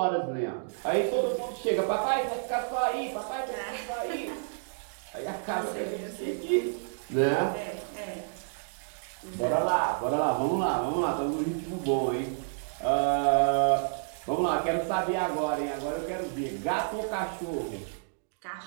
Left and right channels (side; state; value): left; silent; digital silence